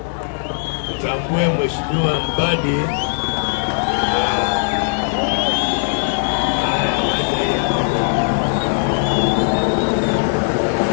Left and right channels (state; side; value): silent; right; digital silence